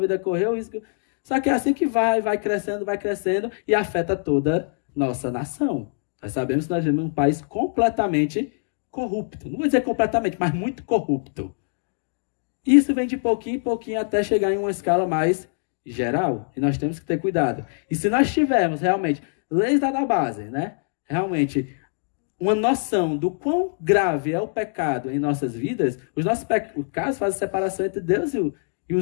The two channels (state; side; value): silent; right; digital silence